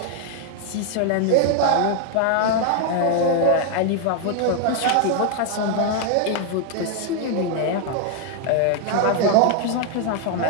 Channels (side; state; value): both; different; correlation 0.00